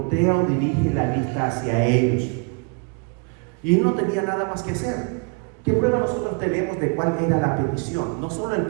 o dirige la vista hacia ellos, y no tenía nada más que hacer. ¿Qué prueba nosotros tenemos de cuál era la petición? No solo el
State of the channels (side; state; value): left; quieter; 35.7 dB